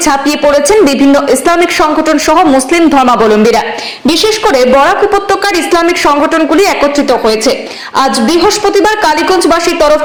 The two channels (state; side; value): identical; both; correlation 1.00